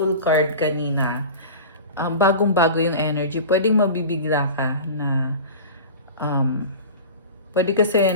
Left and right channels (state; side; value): inverted; both; correlation -0.34